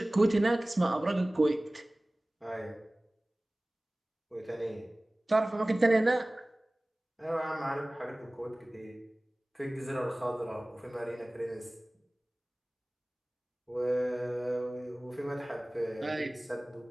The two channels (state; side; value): normal; both; correlation 0.98